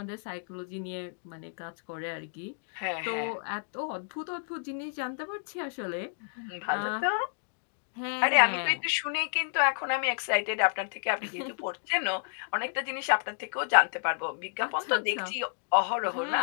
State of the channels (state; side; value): silent; right; digital silence